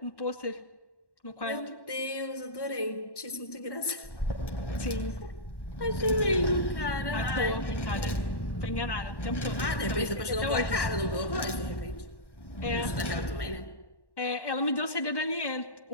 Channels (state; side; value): late; right; 1.1 ms